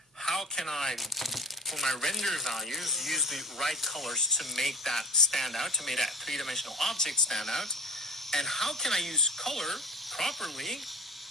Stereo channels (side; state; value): both; normal; correlation 0.37